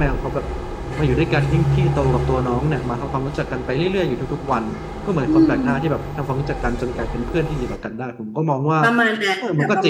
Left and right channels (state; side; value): identical; both; correlation 1.00